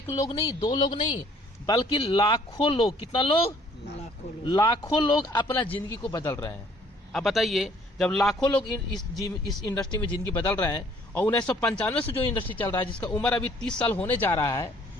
लोग नहीं, दो लोग नहीं, बल्कि लाखों लोग, कितना लोग? लाखों लोग अपना जिंदगी को बदल रहे हैं। अब बताइए, जब लाखों लोग इस इंडस्ट्री में जिंदगी बदल रहे हैं और 1995 से जो इंडस्ट्री चल रहा है, जिसका उम्र अभी 30 साल होने जा रहा है,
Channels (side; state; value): both; normal; correlation 0.59